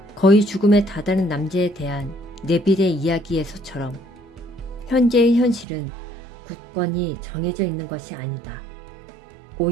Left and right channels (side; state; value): left; drops out; at 5.7 s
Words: 거의 죽음에 다다른 남자에 대한 네빌의 이야기에서처럼 현재의 현실은 굳건히 정해져 있는 것이 아니다.